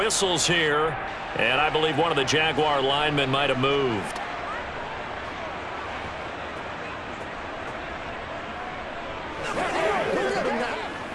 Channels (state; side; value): identical; both; correlation 1.00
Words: here, and I believe one of the Jaguar linemen might have moved.